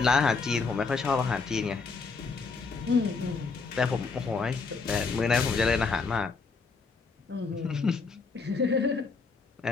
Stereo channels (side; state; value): right; quieter; 4.6 dB